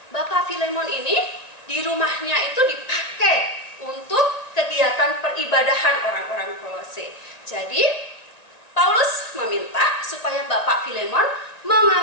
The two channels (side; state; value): right; late; 1.9 ms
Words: Bapak Filemon ini di rumahnya itu dipakai untuk kegiatan peribadahan orang-orang Kolose. Jadi Paulus meminta supaya Bapak Filemon